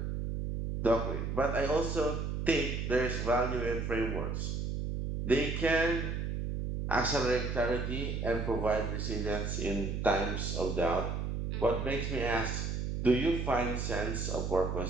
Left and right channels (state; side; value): noise; right; hum, 2 dB below the sound